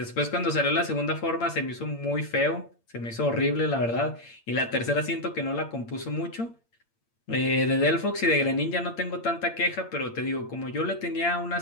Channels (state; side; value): late; right; 8.7 ms